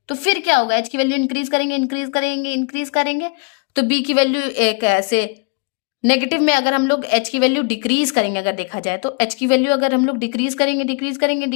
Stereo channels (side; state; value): right; quieter; 33.7 dB